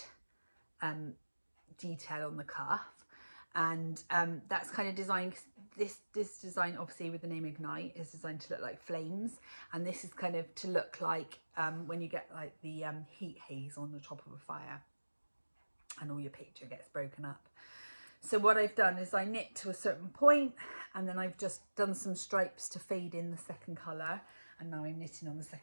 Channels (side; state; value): both; inverted; correlation -1.00